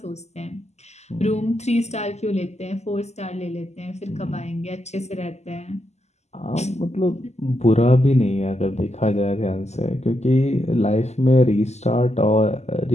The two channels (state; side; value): late; right; 0.33 ms